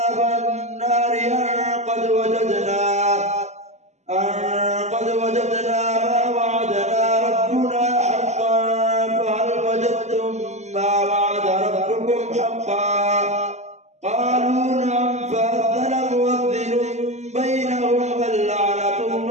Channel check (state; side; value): late; left; 0.33 ms